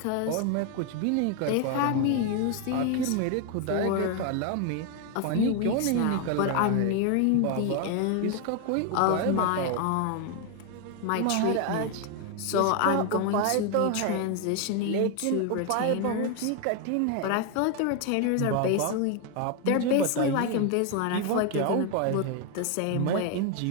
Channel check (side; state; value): both; different; correlation 0.01